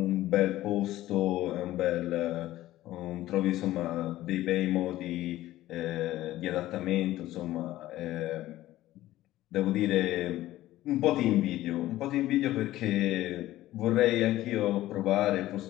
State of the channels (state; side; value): quieter; right; 15.3 dB